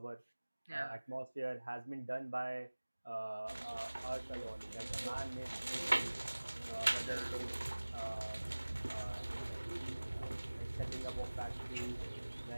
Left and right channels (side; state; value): both; inverted; correlation -1.00